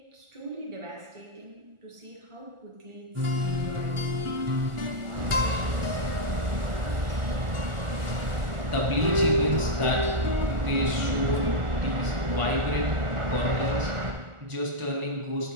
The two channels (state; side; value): late; left; 1.4 ms